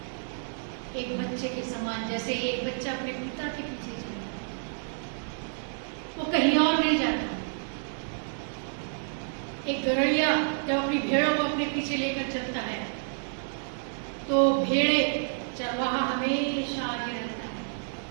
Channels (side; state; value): left; silent; 58 dB below the other